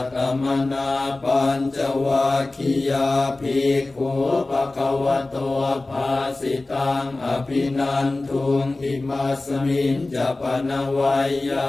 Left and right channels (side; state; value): right; quieter; 3.1 dB